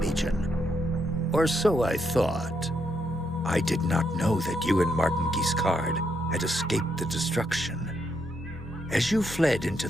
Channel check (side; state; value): both; normal; correlation 0.78